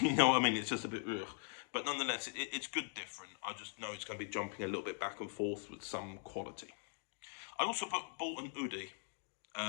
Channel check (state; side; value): silent; right; 50 dB below the other